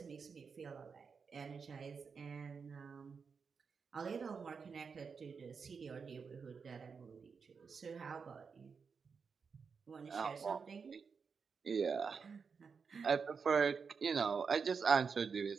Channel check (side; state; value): left; quieter; 5.6 dB